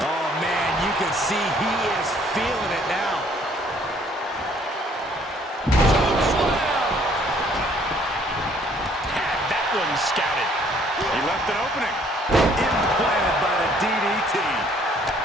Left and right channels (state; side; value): normal; both; correlation 0.61